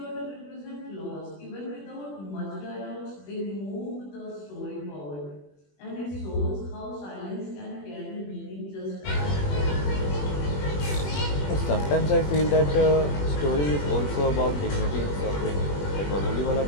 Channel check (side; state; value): right; late; 21 ms